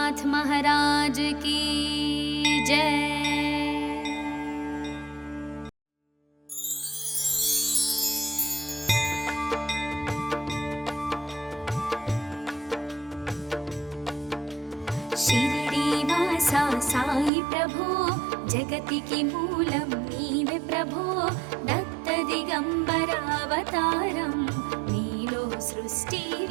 महाराज की जय. షిరిడి వాస సాయి ప్రభో, జగతికి మూలం నీవే ప్రభో, దత్త దిగంబరావతారం నీలో సృష్టి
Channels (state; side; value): drops out; left; at 17.3 s